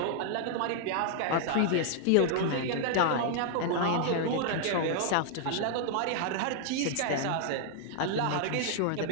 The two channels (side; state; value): both; different; correlation -0.01